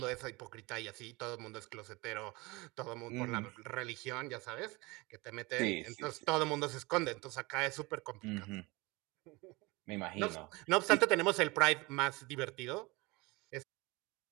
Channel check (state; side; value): quieter; left; 24.0 dB